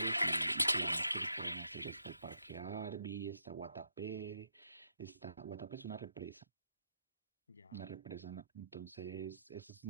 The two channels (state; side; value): inverted; both; correlation -0.79